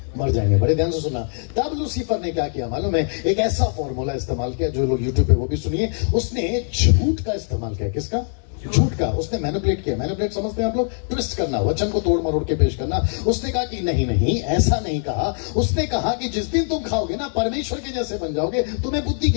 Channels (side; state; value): right; silent; 57 dB below the other